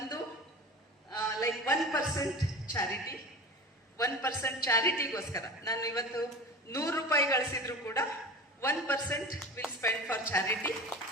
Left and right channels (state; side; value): normal; both; correlation 0.34